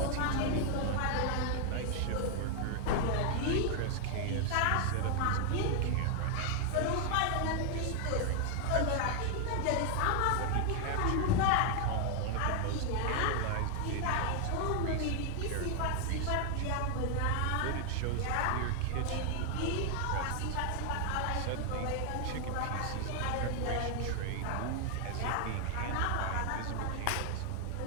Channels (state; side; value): different; both; correlation 0.00